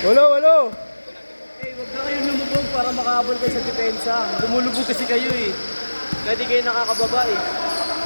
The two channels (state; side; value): inverted; both; correlation -1.00